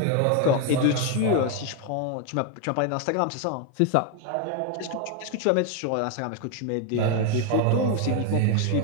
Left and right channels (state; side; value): different; both; correlation 0.01